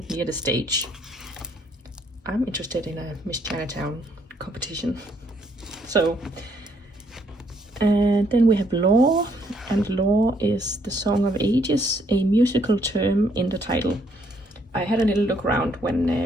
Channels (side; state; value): both; normal; correlation 0.69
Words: near the stage. I'm interested in a Miss Chinatown competition. So, and then we have Law, and Law is the Song of Ages, a musical term in the title. I had a little look around